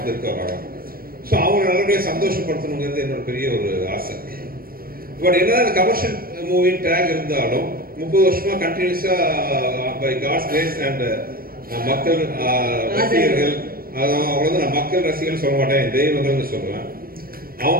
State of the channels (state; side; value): late; left; 0.43 ms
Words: வராங்க. ஸோ அவங்க நல்லபடியாக சந்தோஷப்படுத்தணுங்கிறது என்னோட பெரிய ஒரு ஆசை. பட் என்னதான் கமர்ஷியல் மூவின் டேக் இருந்தாலும் 30 வருஷமா கண்டினியூஸா பை காட்ஸ் கிரேஸ் அண்ட் மக்கள் ரசிகர்கள், அவங்க வந்து நான் மக்கள் ரசிகர்கள் சொல்ல மாட்டேன், தெய்வங்கள்னு சொல்லுவேன்.